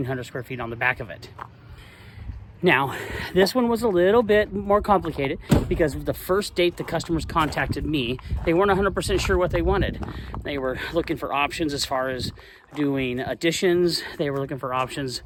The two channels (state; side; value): identical; both; correlation 1.00